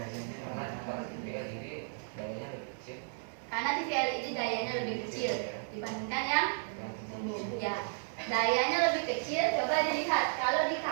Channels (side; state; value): left; silent; 55 dB below the other